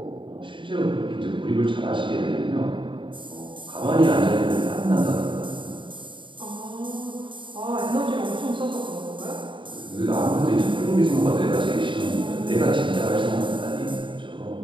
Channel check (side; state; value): left; late; 0.24 ms